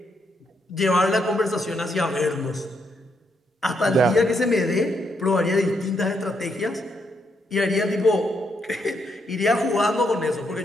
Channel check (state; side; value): normal; both; correlation 0.77